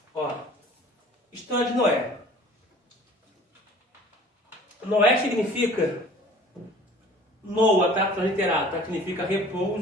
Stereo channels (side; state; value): both; normal; correlation 0.47